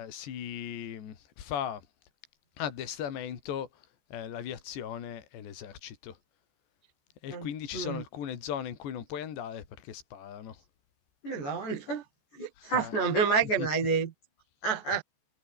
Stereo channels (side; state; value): right; late; 14 ms